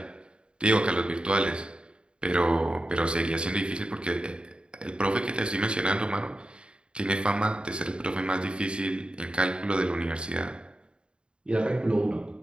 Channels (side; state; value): left; late; 0.053 ms